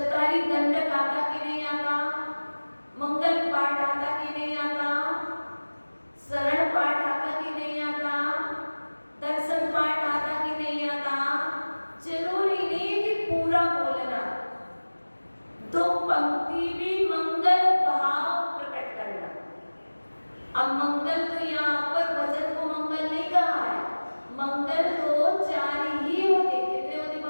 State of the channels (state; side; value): inverted; both; correlation -1.00